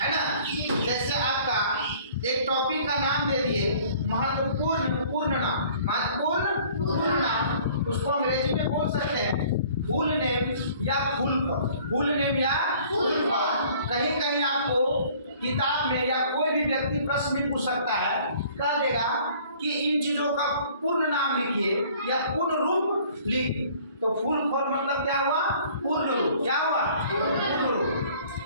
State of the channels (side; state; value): both; inverted; correlation -0.53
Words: है ना। जैसे आपका एक टॉपिक का नाम दे दिए महत्वपूर्ण पूर्ण नाम, उसको अंग्रेजी में बोल सकते हैं फुल नेम या फुल नेम या फुल फॉर्म। कहीं कहीं आपको किताब में या कोई भी व्यक्ति प्रश्न में पूछ सकता है, कह देगा कि इन चीजों का पूर्ण नाम लिखिए या पूर्ण रूप लिखिए। तो फुल फॉर्म मतलब क्या हुआ? पूर्ण रूप। क्या हुआ? पूर्ण रूप,